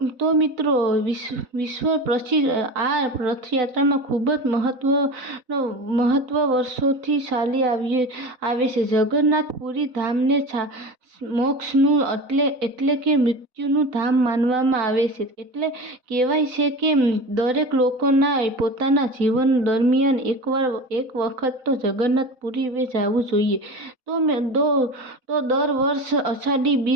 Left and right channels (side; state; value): left; late; 4.0 ms